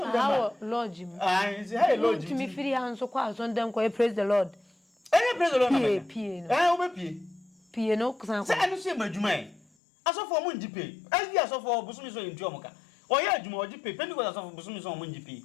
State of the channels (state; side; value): drops out; right; at 9.6 s